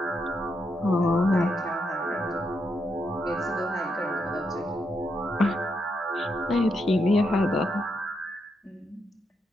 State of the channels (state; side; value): normal; both; correlation 0.81